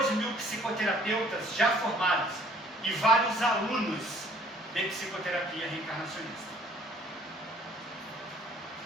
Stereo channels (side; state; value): both; normal; correlation 0.57